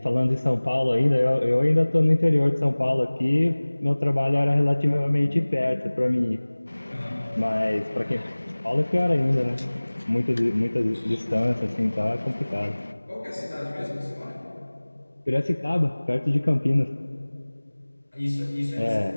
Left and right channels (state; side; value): inverted; both; correlation -1.00